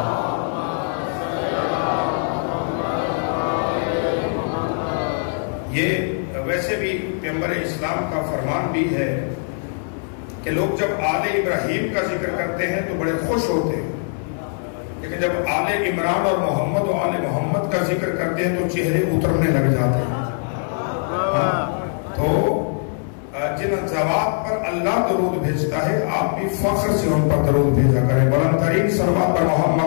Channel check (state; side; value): silent; right; 64 dB below the other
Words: یہ ویسے بھی پیغمبر اسلام کا فرمان بھی ہے کہ لوگ جب آل ابراہیم کا ذکر کرتے ہیں تو بڑے خوش ہوتے ہیں، لیکن جب آل عمران اور محمد و آل محمد کا ذکر کرتے ہیں تو چہرے اترنے لگ جاتے ہیں. ذوات پر اللہ درود بھیجتا ہے، آپ بھی فخر سے ان پر درود بھیجا کریں۔ بلند ترین صلوات پر